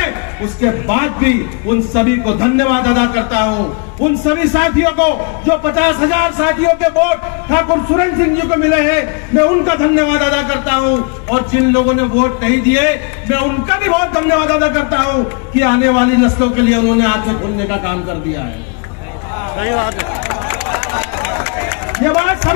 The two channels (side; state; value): right; quieter; 35.6 dB